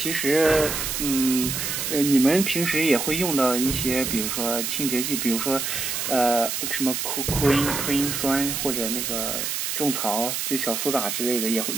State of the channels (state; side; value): noise; right; hiss, 2 dB below the sound